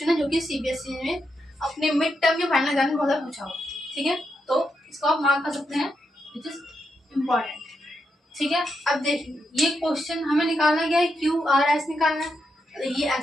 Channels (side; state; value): both; normal; correlation 0.83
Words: है जो कि सीबीएसई में अपने मिड टर्म या फाइनल एग्जाम में बहुत पूछा हुआ, ठीक है, तो इसको आप मार्क कर सकते हैं, विच इज इम्पोर्टेंट, ठीक है। अब देखिए ये क्वेश्चन हमें निकालना क्या है, क्यू आर एस निकालना है। ये